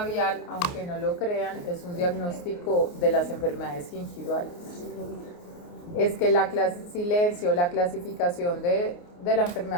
aunque no lo crean, es un diagnóstico de las enfermedades gingivales. Es que la clasificación de la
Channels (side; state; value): right; late; 29 ms